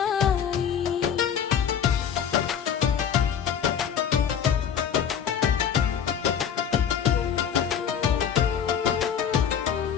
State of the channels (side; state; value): right; quieter; 8.2 dB